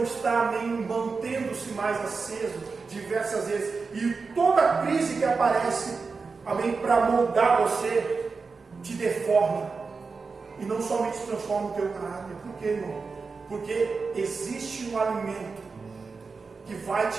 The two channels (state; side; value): quieter; left; 4.6 dB